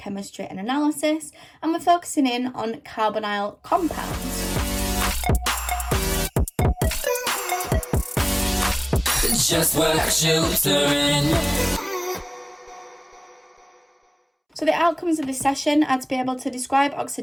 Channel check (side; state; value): both; identical; correlation 1.00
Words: and Analysis, and we're focusing in on carbonyl compounds. Just what you doing. So the outcomes of this session are to be able to describe